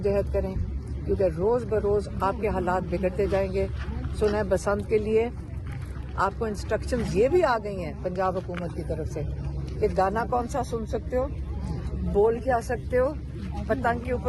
करें, क्योंकि रोज़ बरोज़ आपके हालात बिगड़ते जाएंगे। सुना बसंत के लिए आपको इंस्ट्रक्शंस ये भी आ गई हैं पंजाब हुकूमत की तरफ से कि गाना कौन सा सुन सकते हो, बोल क्या सकते हो, पतंग के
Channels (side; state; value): both; identical; correlation 1.00